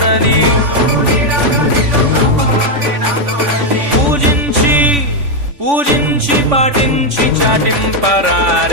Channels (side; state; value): left; late; 3.5 ms